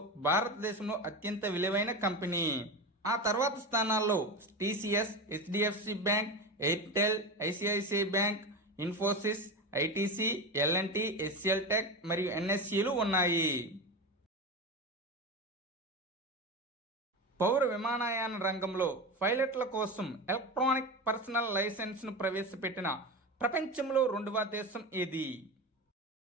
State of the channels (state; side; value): normal; both; correlation 0.22